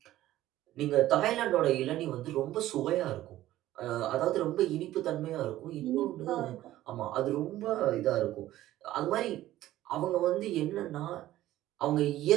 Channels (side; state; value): left; quieter; 14.6 dB